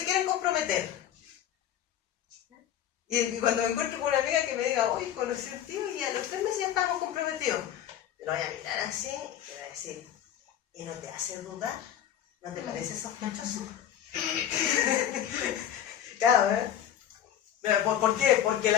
quieren comprometer. Y cuando me encuentro con una amiga que me diga, oye, conocí a un tío y a los 3 meses ya estamos comprometidos, lo voy a mirar así y voy a decir, ¿y no te hace dudar? ¿No te parece sospechoso? Claro, ¿eh? ¿Por qué? Porque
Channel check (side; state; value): right; quieter; 10.5 dB